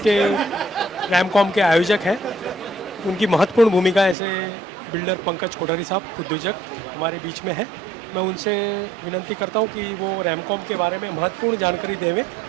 रैमकॉम के आयोजक हैं उनकी महत्वपूर्ण भूमिका ऐसे बिल्डर पंकज कोठारी साहब उद्योजक हमारे बीच में है। मैं उनसे विनती करता हूँ कि वो रैमकॉम के बारे में महत्वपूर्ण जानकारी देवें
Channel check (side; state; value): left; drops out; at 4.2 s